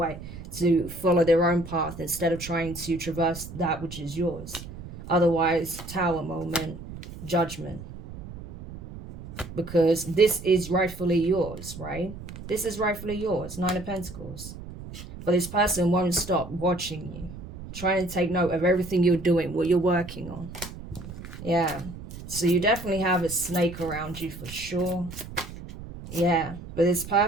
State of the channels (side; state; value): right; noise; rumble, 13 dB below the sound